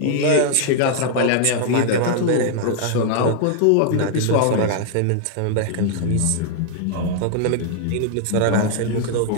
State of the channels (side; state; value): both; different; correlation -0.01